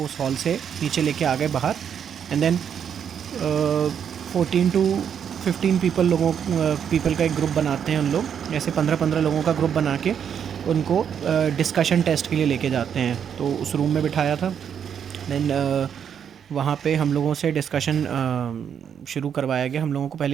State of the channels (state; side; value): quieter; left; 8.1 dB